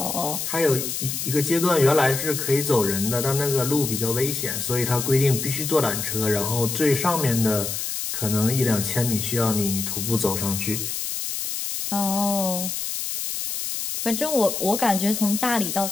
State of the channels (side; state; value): left; noise; hiss, 4 dB below the sound